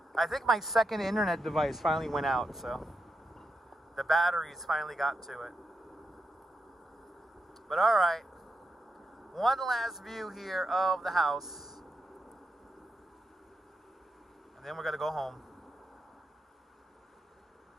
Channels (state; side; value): normal; both; correlation 0.86